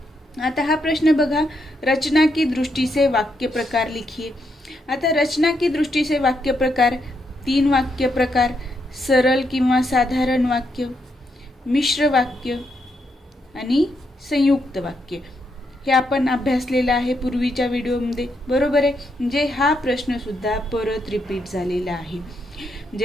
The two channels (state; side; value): normal; both; correlation 0.79